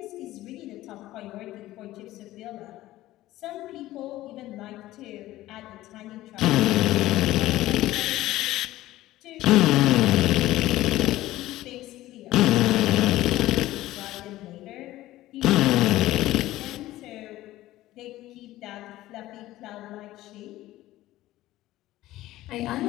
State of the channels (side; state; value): right; quieter; 16.0 dB